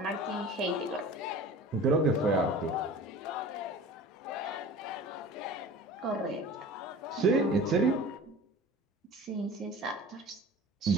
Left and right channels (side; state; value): both; normal; correlation 0.39